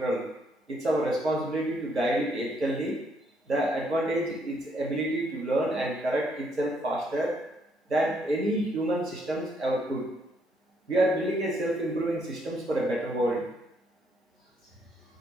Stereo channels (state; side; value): normal; both; correlation 0.72